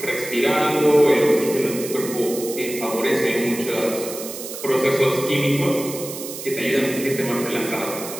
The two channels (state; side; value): noise; right; hiss, 10 dB below the sound